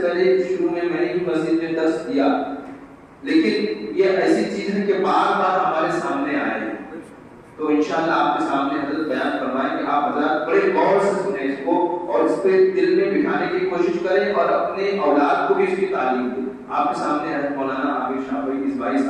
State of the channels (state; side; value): identical; both; correlation 1.00